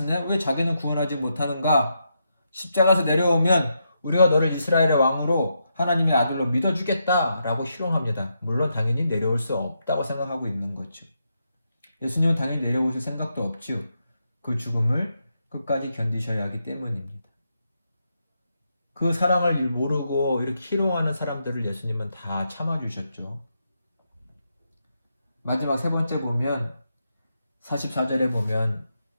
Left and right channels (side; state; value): both; inverted; correlation -0.82